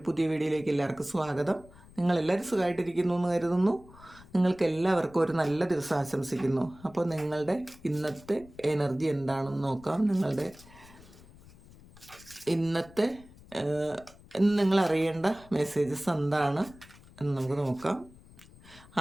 പുതിയ വീഡിയോയിലേക്ക് എല്ലാവർക്കും സ്വാഗതം. നിങ്ങളെല്ലാവരും സുഖമായിട്ടിരിക്കുന്നു എന്ന് കരുതുന്നു. നിങ്ങൾക്ക് എല്ലാവർക്കും ഒരു നല്ല ദിവസം ആശംസിക്കുന്നു. അപ്പോൾ നിങ്ങളുടെ ഇന്നത്തെ എനർജി എന്താണെന്ന് നോക്കാം. നിങ്ങളുടെ ഇന്നത്തെ ഇന്ന് നിങ്ങൾ അറിയേണ്ട മെസ്സേജസ് എന്താണ് എന്ന് നമുക്ക് നോക്കാം.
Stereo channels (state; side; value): noise; left; rumble, 22 dB below the sound